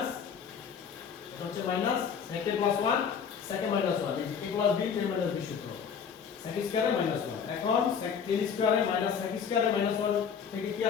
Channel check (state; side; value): quieter; right; 6.9 dB